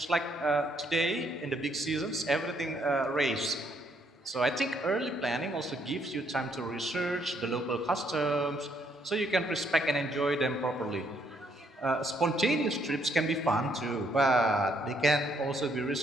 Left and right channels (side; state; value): both; normal; correlation 0.71